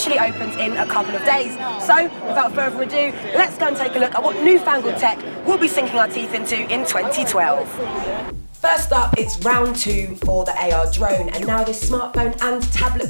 opens in a couple of days. So, without further ado, let's go and take a look at what newfangled tech we'll be sinking our teeth into in 2012. First up, it's round 2 for the AR drone, and now this smartphone and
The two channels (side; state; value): both; inverted; correlation -1.00